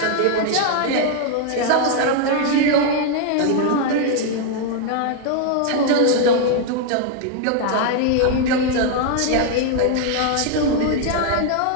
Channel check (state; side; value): different; both; correlation 0.00